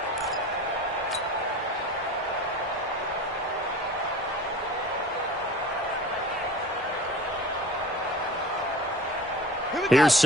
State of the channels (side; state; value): both; normal; correlation 0.39